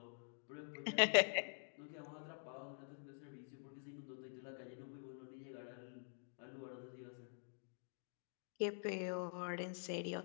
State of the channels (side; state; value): right; silent; digital silence